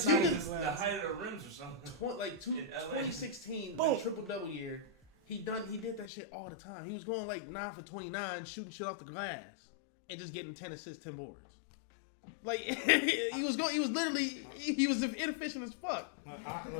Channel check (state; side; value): drops out; right; at 6.1 s